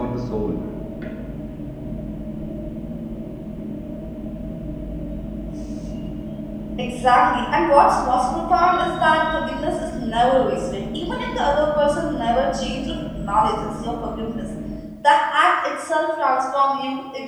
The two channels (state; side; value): identical; both; correlation 1.00